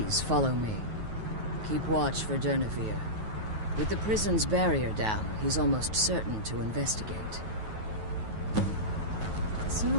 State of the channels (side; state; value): left; late; 9.3 ms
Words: follow me. Keep watch for Durnevere. With the prison's barrier down, he's almost certain to investigate. The sooner